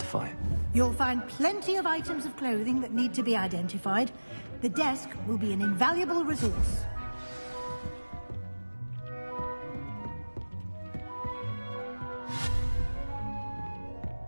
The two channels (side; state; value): both; inverted; correlation -1.00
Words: You'll find plenty of items of clothing that need to be identified. The desk will be an invaluable resource.